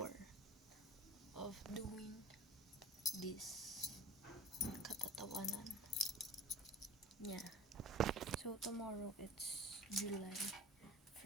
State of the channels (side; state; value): both; normal; correlation 0.37